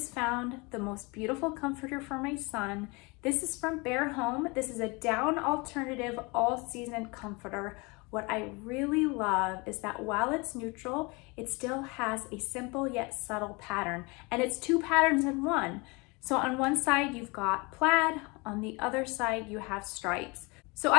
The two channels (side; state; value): right; quieter; 27.4 dB